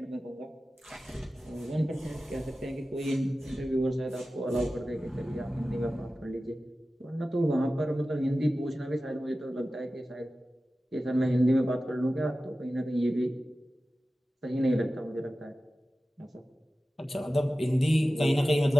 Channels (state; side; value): normal; both; correlation 0.95